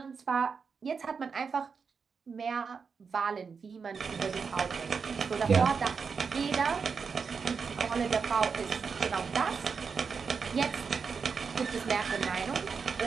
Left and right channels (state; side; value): quieter; left; 5.6 dB